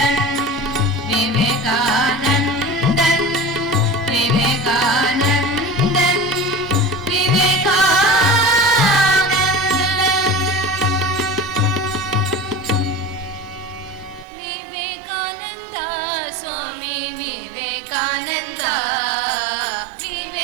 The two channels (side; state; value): left; drops out; at 14.2 s